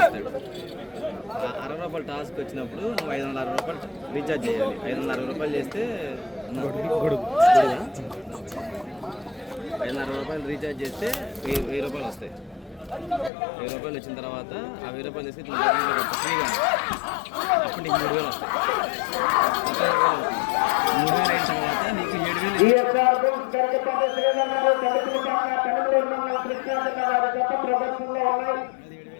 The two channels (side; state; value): right; drops out; at 13.3 s